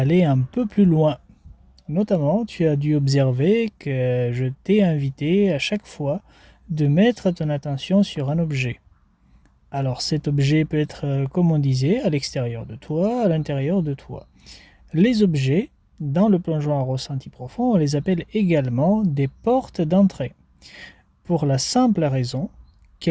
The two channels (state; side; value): identical; both; correlation 1.00